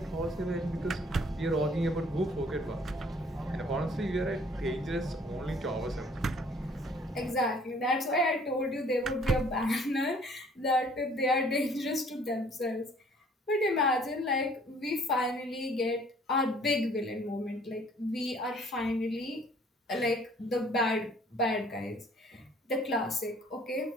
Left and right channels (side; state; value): both; normal; correlation 0.57